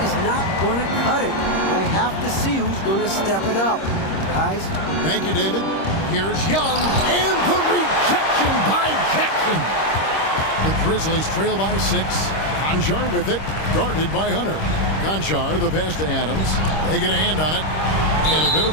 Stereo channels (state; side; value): late; right; 26 ms